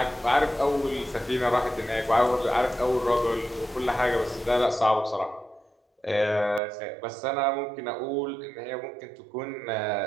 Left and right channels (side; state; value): left; drops out; at 6.6 s